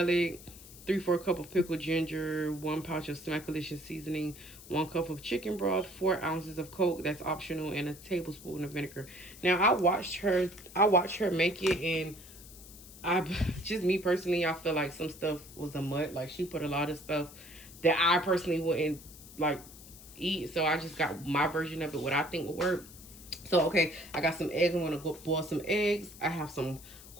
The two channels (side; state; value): left; noise; hiss, 18 dB below the sound